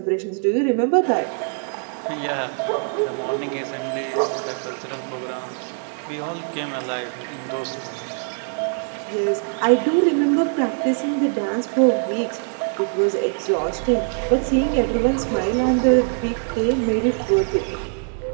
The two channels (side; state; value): left; silent; 58 dB below the other